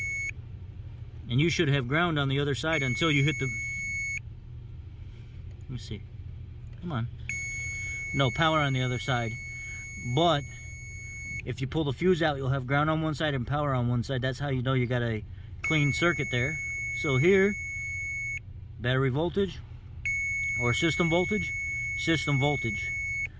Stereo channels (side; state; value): both; identical; correlation 1.00